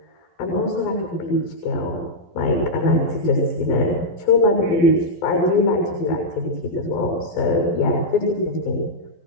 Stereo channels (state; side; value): late; right; 12 ms